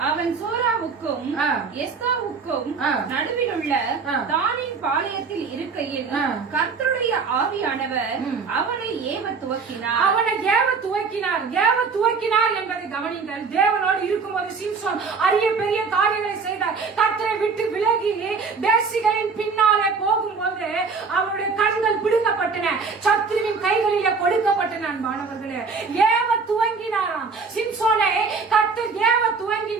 அவன் சோராவுக்கும் எஸ்தாவுக்கும் நடுவில் உள்ள தானின் பாளையத்தில் இருக்கையில் கர்த்தருடைய ஆவியானவர் அவனை ஏவ துவக்கினார் என்பதை கவனிங்கள். தேவனோடு இருக்கும்போது சிம்சோன் அரிய பெரிய காரியங்களை செய்தார். கர்த்தரை விட்டு விலகி தேசிகளின் பின்னாலே போகும்போது அவருடைய கண்கள் பிடுங்கப்பட்டன, சத்ருவின் கைகளிலே கொடுக்கப்பட்டன. அன்பானவர்களே, ஏவ துவங்கினாராம் சிம்சோனை கர்த்தர் ஏவ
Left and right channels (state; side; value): quieter; left; 5.0 dB